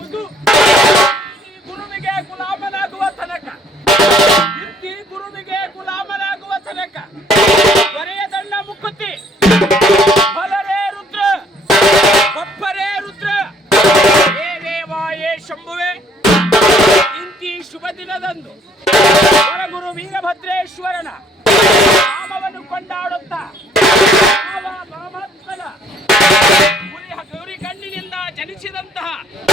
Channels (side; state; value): both; normal; correlation 0.62